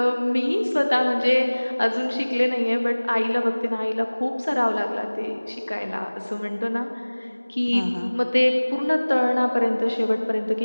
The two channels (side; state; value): both; inverted; correlation -1.00